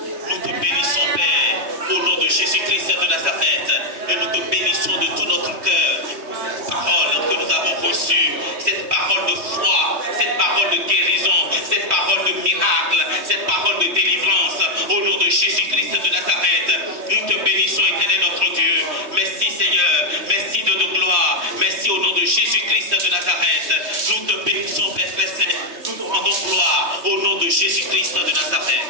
nous te bénissons, Père, au nom de Jésus-Christ de Nazareth, et nous te bénissons de tout notre cœur pour cette parole que nous avons reçue, cette parole de foi, cette parole de guérison, cette parole de miracle, cette parole de délivrance, au nom de Jésus-Christ de Nazareth. Nous te bénissons, Éternel notre Dieu. Merci Seigneur, merci de nos gloires, merci au nom de Jésus-Christ de Nazareth. Nous te bénissons, Père Saint, nous te rendons gloire au nom de Jésus-Christ de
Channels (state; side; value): late; left; 3.1 ms